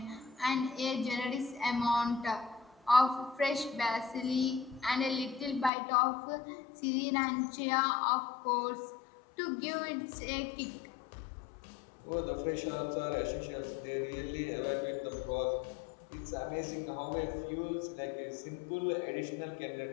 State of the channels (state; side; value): drops out; right; at 5.7 s